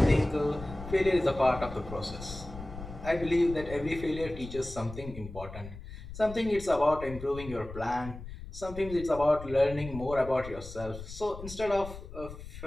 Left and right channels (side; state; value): left; noise; rumble, 12 dB below the sound